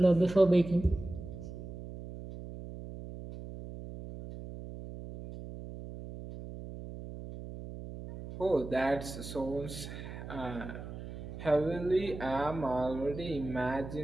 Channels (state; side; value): noise; right; hum, 11 dB below the sound